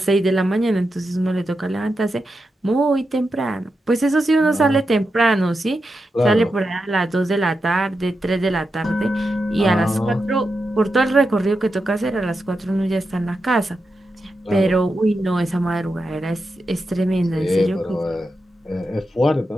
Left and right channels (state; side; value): normal; both; correlation 0.88